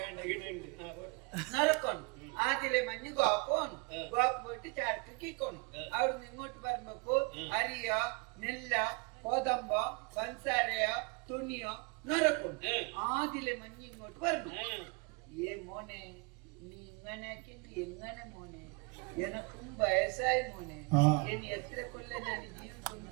നറക്കണം ആദ്യലെ മഞ്ഞ് ഗോക്കോണം ഗോക്ക് പോയിട്ട് ചരക്ക് കിക്കോണം അവിടുന്ന് ഇങ്ങോട്ട് വരുമ്പോ അരിയ നെല്ല കോതമ്പ പഞ്ചസാരയ തുണിയോ നറക്കും ആദ്യലെ മഞ്ഞ് ഇങ്ങോട്ട് വരണം ഏ മോനെ നീ ഇങ്ങനെ എങ്ങനെ മോനെ എനക്കും വയസ്സായി മോനെ ഇനി എത്ര കൊല്ലം ഞാൻ ജീവിതം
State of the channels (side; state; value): left; quieter; 30.9 dB